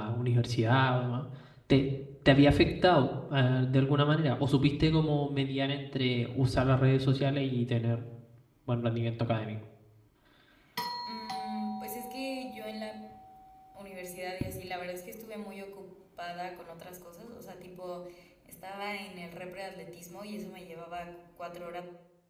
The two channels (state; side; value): identical; both; correlation 1.00